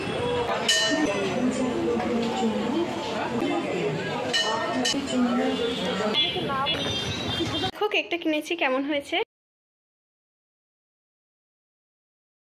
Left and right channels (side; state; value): both; identical; correlation 1.00